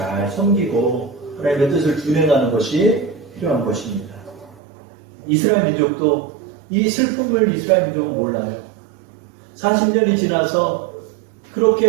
섬기고 하나님의 뜻을 준행하는 것이 필요한 것입니다. 이스라엘 민족도 이 슬픔을 이스라엘 민족은 몰라요. 40년이 지나서 그렇게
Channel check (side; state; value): left; drops out; at 4.6 s